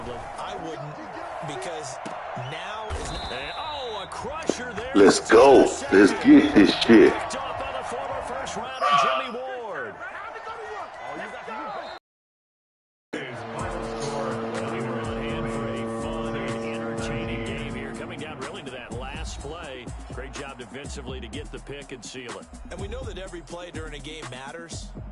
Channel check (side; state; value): both; identical; correlation 1.00